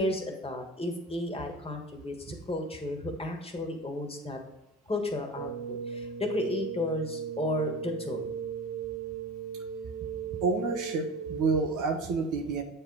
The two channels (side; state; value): both; normal; correlation 0.33